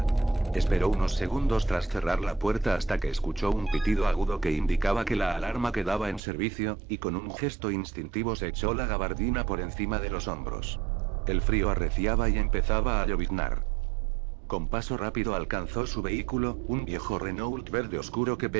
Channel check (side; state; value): left; drops out; at 6.2 s